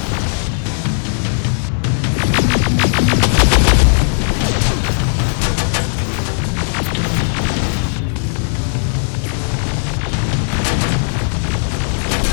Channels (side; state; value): right; silent; 66 dB below the other